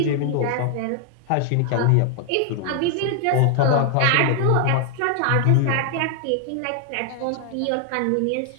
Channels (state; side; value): different; both; correlation 0.00